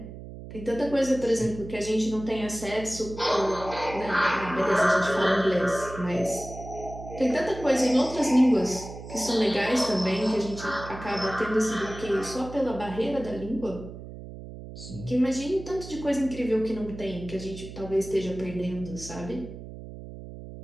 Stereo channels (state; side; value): noise; right; hum, 13 dB below the sound